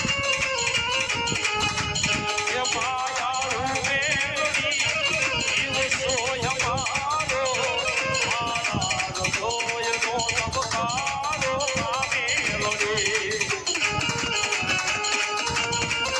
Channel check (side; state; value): both; identical; correlation 1.00